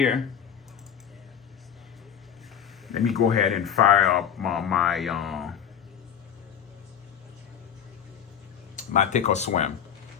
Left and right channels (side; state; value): right; quieter; 8.5 dB